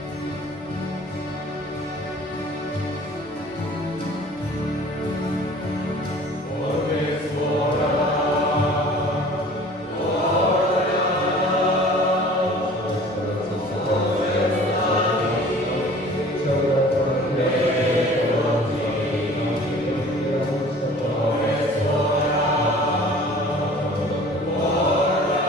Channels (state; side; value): noise; right; hum, 30 dB below the sound